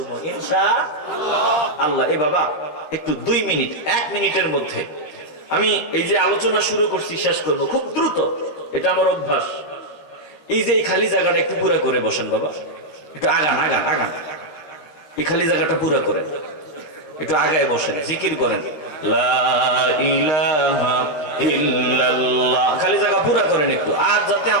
ইনশাআল্লাহ। এ বাবা একটু 2 মিনিট, 1 মিনিটের মধ্যে আমি এই যে আলোচনা শুরু করছি শেষ করব, খুব দ্রুত, এটা আমার অভ্যাস। এই যে এই খালি জায়গাটা একটু পুরা করে বসেন বাবা, একটু আগান আগান আগান, এই খালি জায়গাটা পুরা করেন, একটু আগায় বসেন, জিকির করেন লা ইলাহা ইল্লাল্লাহ, খালি জায়গা পুরা করেন একটু, আর যাতে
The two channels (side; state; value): right; late; 13 ms